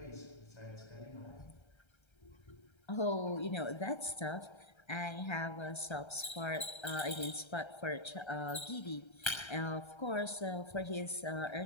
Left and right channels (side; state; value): right; late; 1.3 ms